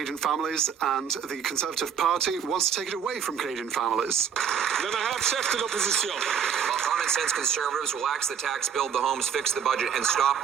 families, and the Conservative Party wants to take it away from Canadian families. Then I have chef de l'opposition. While common sense conservatives will axe the tax, build the homes, fix the budget, and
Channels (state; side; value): quieter; left; 7.7 dB